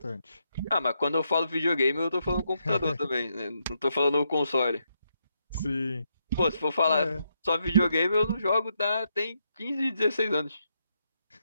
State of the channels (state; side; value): inverted; both; correlation -0.80